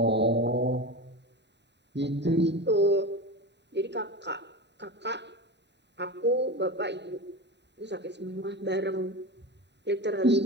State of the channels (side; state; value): left; late; 0.50 ms